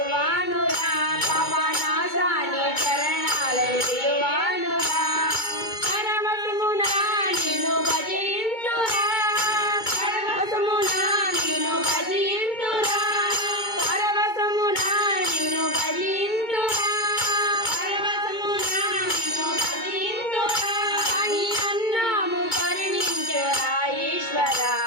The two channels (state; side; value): late; right; 2.2 ms